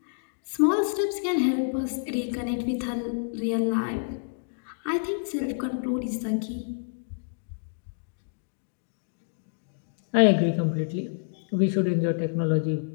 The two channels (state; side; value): silent; right; digital silence